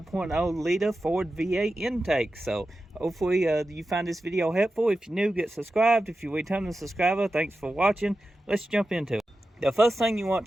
liter Ford V8 intake. So hopefully you find this video helpful. If you're new, get subscribed. If you're a returning subscriber, thanks for watching. Let's jump into it. The first thing you want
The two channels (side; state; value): both; normal; correlation 0.92